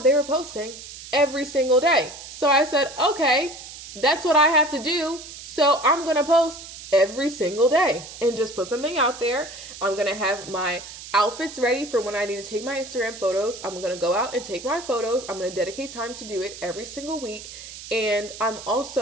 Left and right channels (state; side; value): noise; right; hiss, 13 dB below the sound